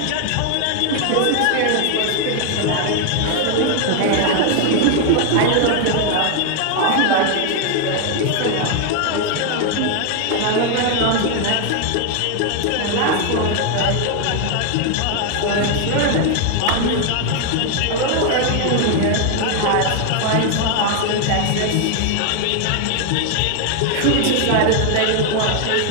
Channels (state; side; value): different; both; correlation 0.00